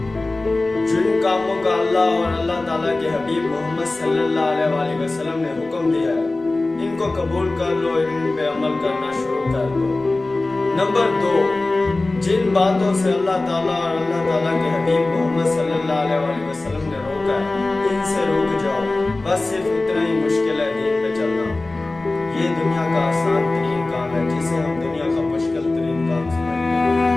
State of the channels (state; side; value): quieter; right; 3.1 dB